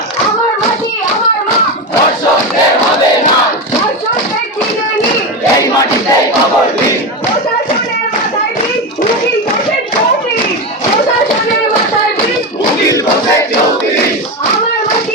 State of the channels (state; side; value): normal; both; correlation 0.17